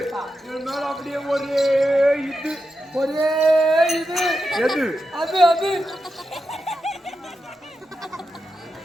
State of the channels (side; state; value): both; normal; correlation 0.89